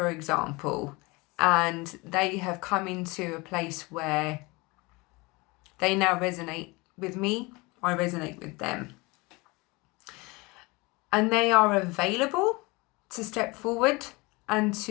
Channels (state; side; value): quieter; right; 25.0 dB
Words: example, and they have come into a place where they now resonate with me, I resonate with them, and they are available to step forward and